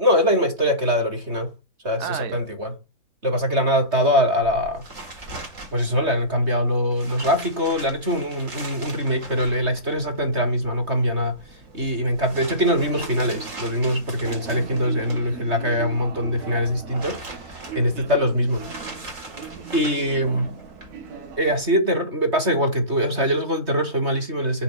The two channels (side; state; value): left; late; 3.2 ms